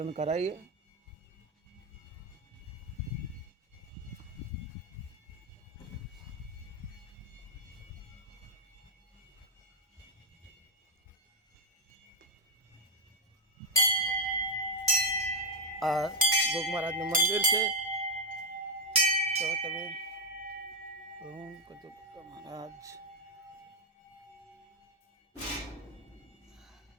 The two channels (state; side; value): normal; both; correlation 0.00